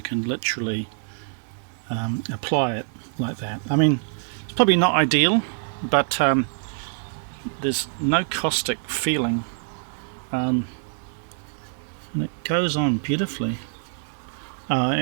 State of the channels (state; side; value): silent; left; digital silence